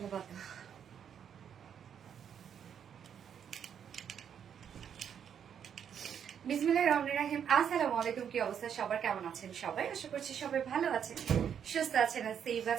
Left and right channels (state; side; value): quieter; left; 8.3 dB